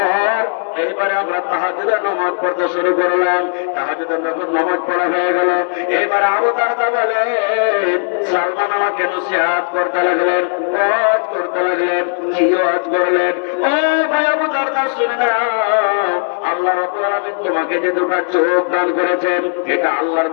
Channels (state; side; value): silent; right; digital silence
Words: এইবারে আমরা তাহাজ্জুদের নামাজ পড়তে শুরু করলাম। তাহাজ্জুদের যখন নামাজ পড়া হয়ে গেল, এবারে আবু দারদা বলেন, সালমান আমাকে নসিহত করতে লাগলেন, ওয়াজ করতে লাগলেন। কি ওয়াজ করলেন? ও ভাই আবু দারদা শুনে নাও, আল্লাহ রাব্বুল আলামিন তোমাকে যে দুটো চোখ দান করেছেন, এটা আল্লাহর